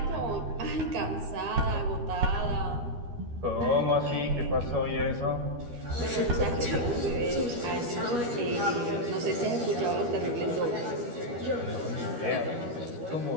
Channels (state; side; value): late; left; 13 ms